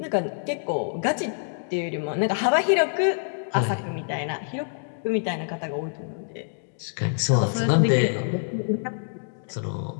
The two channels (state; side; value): silent; right; digital silence